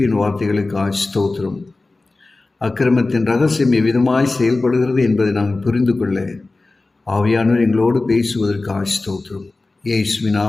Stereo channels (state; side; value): quieter; right; 3.3 dB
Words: வார்த்தைகளுக்கு ஸ்தோத்திரம். அக்கிரமத்தின் ரகசியம் எவ்விதமாய் செயல்படுகிறது என்பதை நாங்கள் புரிந்து கொள்ள ஆவியானவர் எங்களோடு பேசுவதற்கு ஸ்தோத்திரம். இயேசுவின்